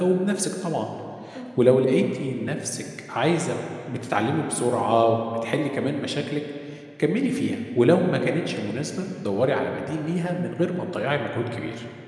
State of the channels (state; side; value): identical; both; correlation 1.00